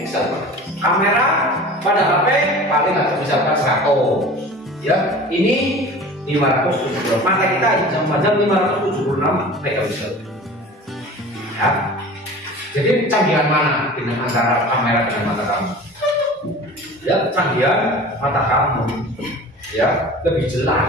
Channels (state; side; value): normal; both; correlation 0.39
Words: Kamera pada HP paling nggak bisa 100. Ya, ini 576. Mata kita cuma 576 megapiksel. Ya. Jadi canggihan mana dengan antara kamera dengan mata kamu? Ya, canggihan mata kamu. Ya, lebih